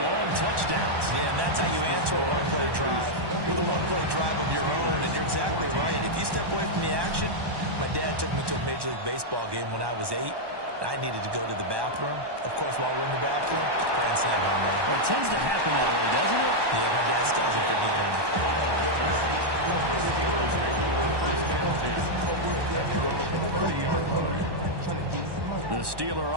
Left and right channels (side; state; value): left; late; 1.1 ms